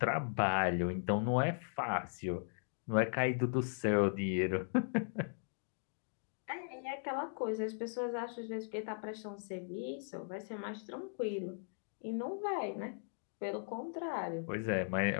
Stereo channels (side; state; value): right; silent; digital silence